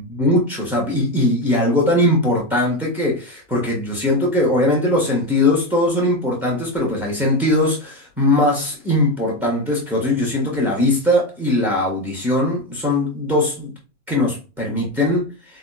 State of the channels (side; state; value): left; late; 2.1 ms